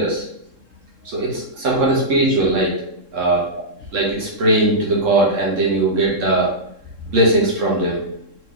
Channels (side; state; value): left; late; 3.7 ms